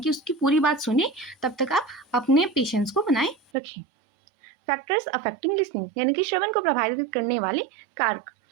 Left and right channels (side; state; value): left; drops out; at 3.4 s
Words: कि उसकी पूरी बात सुने, तब तक आप अपने पेशेंस को बनाए रखें। फैक्टर्स अफेक्टिंग लिसनिंग, यानी कि श्रवण को प्रभावित करने वाले कारक।